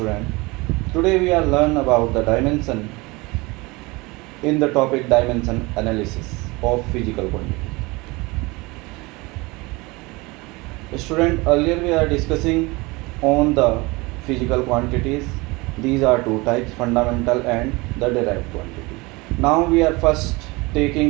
Today we are learn about the dimension in the topic dimension analysis of physical quantity. Student, earlier we are discussing on the physical quantities. These are two types, fundamental and the derived quantity. Now we are first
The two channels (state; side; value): quieter; left; 24.1 dB